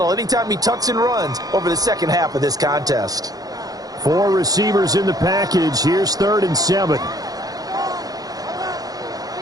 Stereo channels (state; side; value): late; left; 0.18 ms